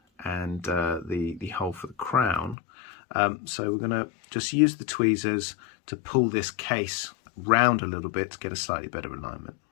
and the hole for the crown. So we're going to just use the tweezers to pull this case round a little bit to get a slightly better alignment.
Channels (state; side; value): drops out; right; at 2.6 s